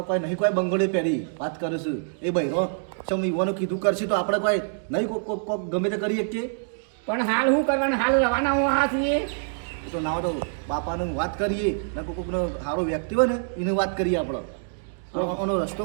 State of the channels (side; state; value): left; silent; digital silence